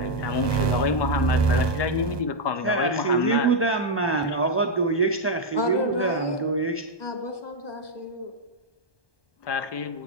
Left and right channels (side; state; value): right; late; 1.2 ms